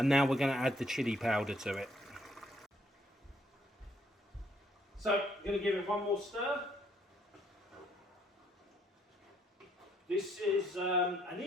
now we're going to add the chili powder to it. So, I'm going to give it one more stir. This is an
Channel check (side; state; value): both; normal; correlation 0.69